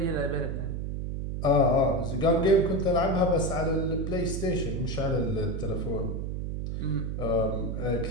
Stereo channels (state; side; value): noise; right; hum, 3 dB below the sound